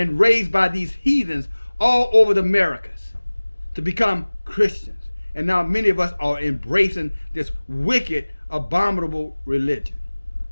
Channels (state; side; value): inverted; both; correlation -1.00